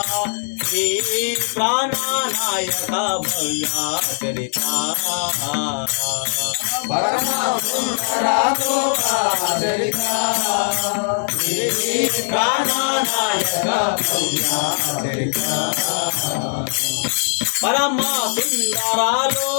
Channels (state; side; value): silent; right; 66 dB below the other